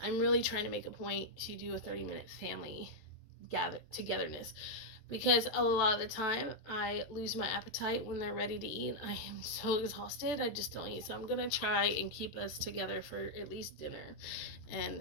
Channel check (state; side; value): late; right; 14 ms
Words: really trying to make a point to do a 30-minute family togetherness, because a lot of the time I lose my appetite when they're ready to eat. I am so exhausted, I just don't eat. So I'm gonna try and keep us together for at least dinner